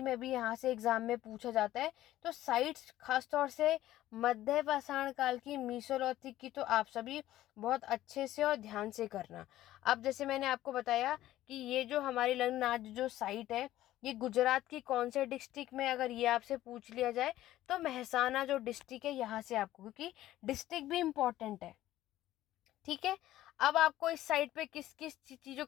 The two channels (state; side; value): quieter; right; 14.3 dB